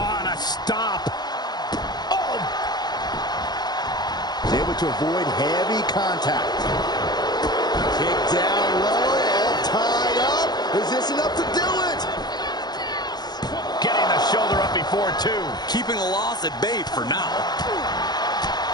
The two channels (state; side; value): late; right; 0.20 ms